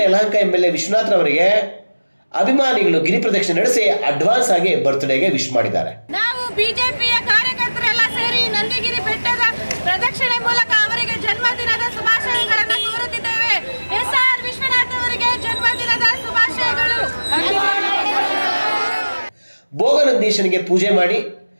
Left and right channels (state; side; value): inverted; both; correlation -1.00